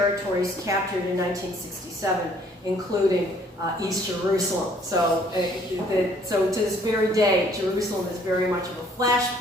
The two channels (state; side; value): normal; both; correlation 0.61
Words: captured in 1967, including East Jerusalem. So to this very day, Jerusalem is very much of a